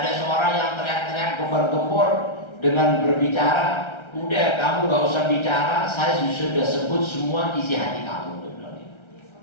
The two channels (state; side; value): late; right; 1.3 ms